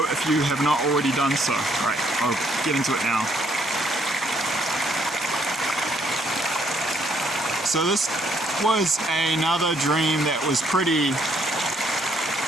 if you have not already done so. Alright, I'll get into it now. So this was another dream that was pretty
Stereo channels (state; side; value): normal; both; correlation 0.69